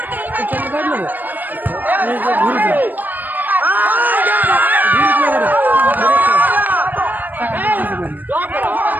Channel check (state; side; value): late; left; 0.087 ms